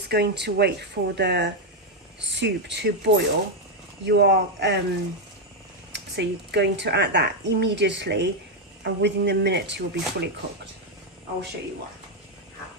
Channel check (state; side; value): normal; both; correlation 0.03